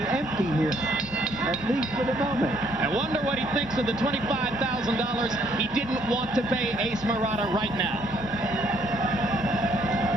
empty here, at least for the moment. I wonder what he thinks of the $25,000 he didn't want to pay Ace Murata right now.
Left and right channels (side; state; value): both; normal; correlation 0.67